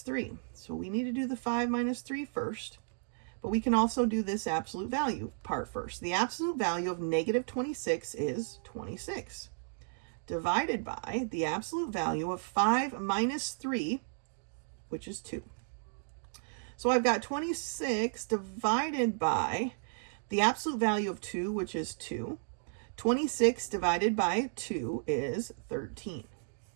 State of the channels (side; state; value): left; silent; digital silence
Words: 3. So we need to do the 5 minus 3 first, but we can also do this absolute value part first. The absolute value of negative 26 is 26 divided by the absolute value of 5 minus 3, which is 2. So I've got 26 divided by the absolute value of 2, which is 2. 26 divided by 2 is 13.